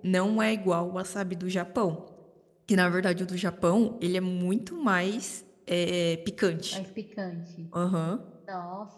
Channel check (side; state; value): both; identical; correlation 1.00